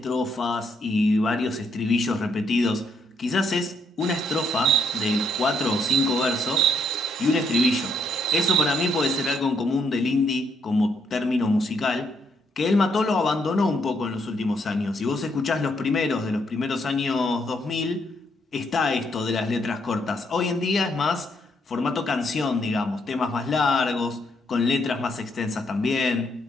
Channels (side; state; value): both; normal; correlation 0.74